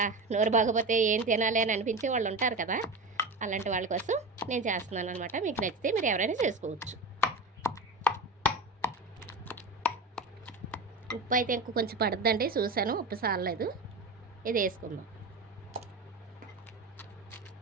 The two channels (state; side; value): quieter; left; 3.2 dB